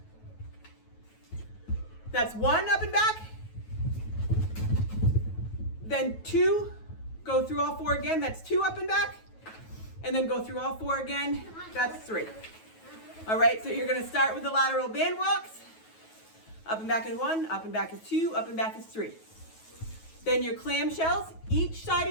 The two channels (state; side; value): late; right; 9.3 ms